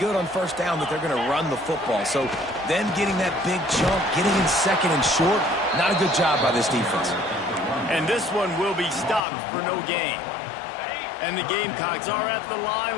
on first down that they're going to run the football. So them getting that big chunk, getting in second and short, not a good job by this defense. And this one will be stopped for no gain. And the Gamecocks are at the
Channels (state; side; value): drops out; right; at 9.2 s